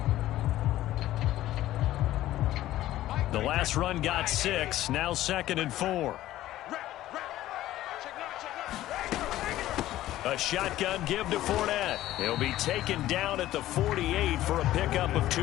The last run got 6, now 2nd and 4. A shotgun give to Fournette. He'll be taken down at the 48 for a pickup of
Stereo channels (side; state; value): right; quieter; 14.5 dB